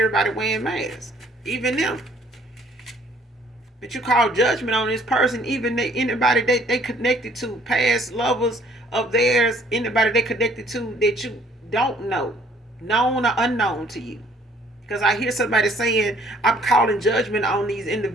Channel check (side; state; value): both; normal; correlation 0.60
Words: wearing masks, even them. But you call judgment on this person, even anybody they connected to, past lovers of theirs, anybody they connected to that you don't know, known or unknown to you. Because I hear somebody saying, I'm calling judgment on these